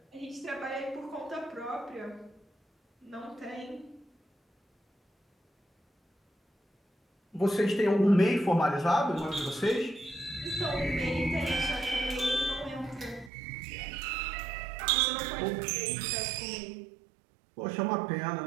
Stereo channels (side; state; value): left; drops out; at 13.3 s